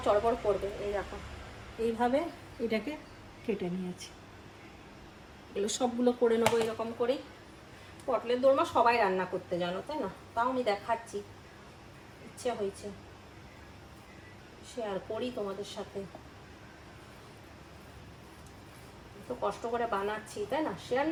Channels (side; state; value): both; identical; correlation 1.00